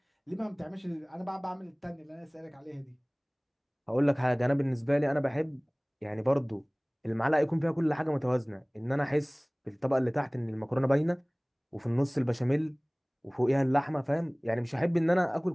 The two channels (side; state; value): both; identical; correlation 1.00